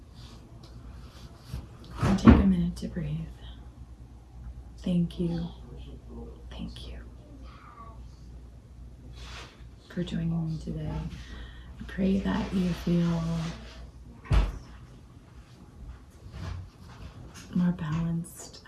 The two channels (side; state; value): both; identical; correlation 1.00